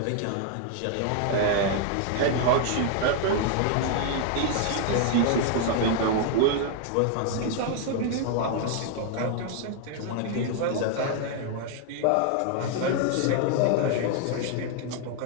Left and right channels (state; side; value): different; both; correlation 0.00